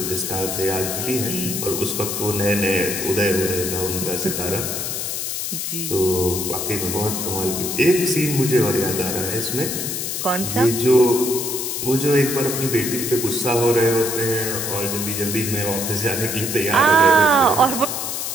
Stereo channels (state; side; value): noise; left; hiss, 3 dB below the sound